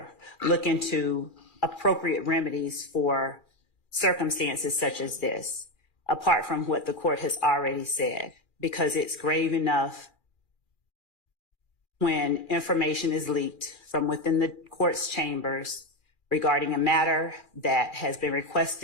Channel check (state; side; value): late; right; 2.4 ms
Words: look into appropriate remedies for circumstances such as this, apart from what the court has already said, because it's grave enough when information is leaked from within the court's chambers regarding a matter that has been